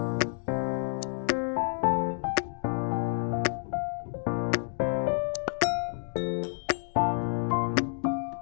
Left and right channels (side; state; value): right; silent; digital silence